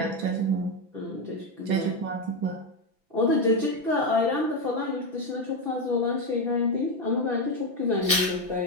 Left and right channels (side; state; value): left; late; 6.0 ms